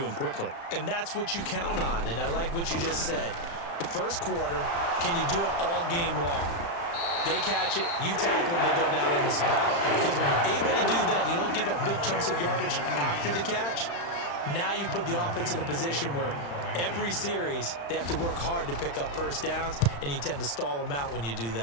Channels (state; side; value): late; right; 35 ms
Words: quickly. And that's what you count on, and I like what you just said. First quarter, can you do it all game long? They catch it, you tackle them, they go down on the spot. Because when you're able to do that, you don't give up big chunks of yardage after the catch, now you put the offense in a position where every series, they have to work hard to pick up first downs, and you tend to stall them out when you do